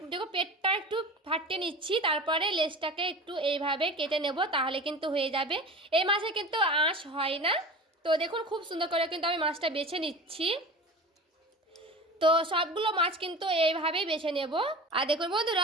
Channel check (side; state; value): both; normal; correlation 0.35